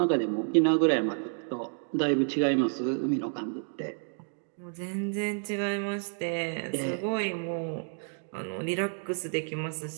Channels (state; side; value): silent; left; digital silence